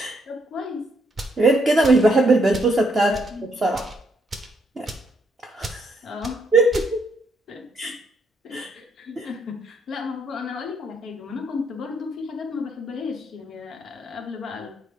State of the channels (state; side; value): normal; both; correlation 0.73